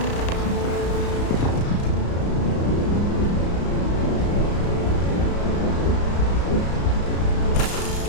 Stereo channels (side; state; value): right; late; 34 ms